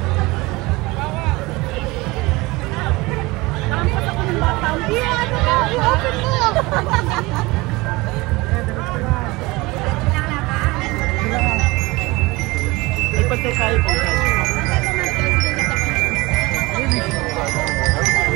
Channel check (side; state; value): left; quieter; 22.4 dB